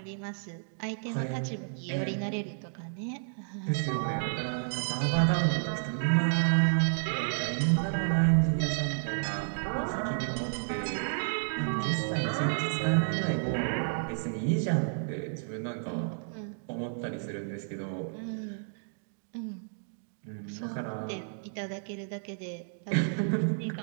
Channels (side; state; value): left; silent; digital silence